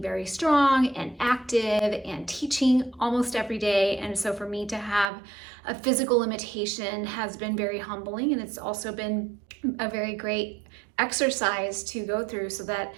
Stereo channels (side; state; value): left; drops out; at 5.1 s